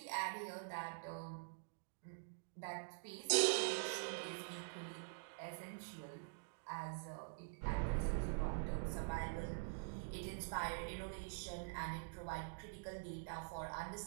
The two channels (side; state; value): left; silent; digital silence